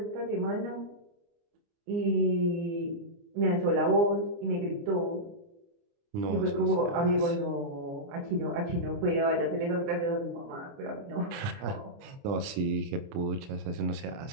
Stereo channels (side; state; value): left; late; 29 ms